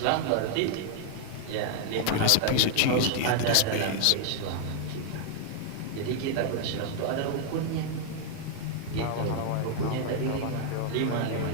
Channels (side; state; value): both; different; correlation 0.00